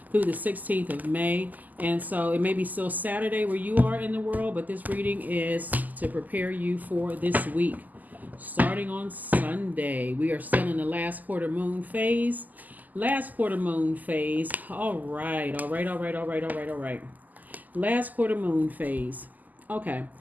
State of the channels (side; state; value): left; late; 0.082 ms